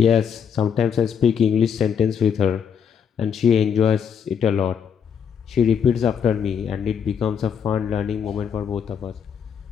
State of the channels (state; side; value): quieter; right; 7.4 dB